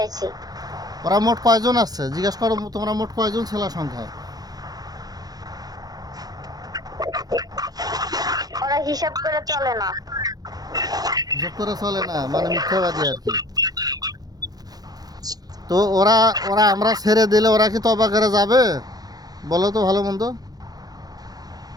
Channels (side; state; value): left; late; 0.19 ms